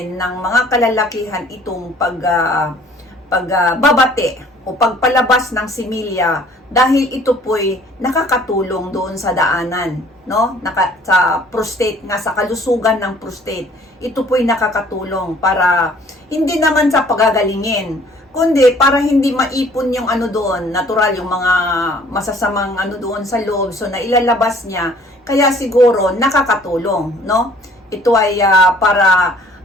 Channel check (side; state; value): both; normal; correlation 0.56